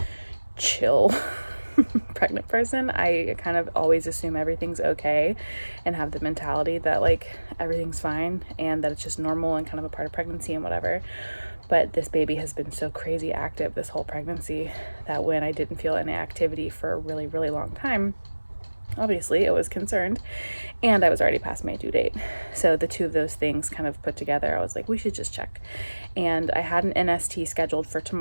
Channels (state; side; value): inverted; both; correlation -1.00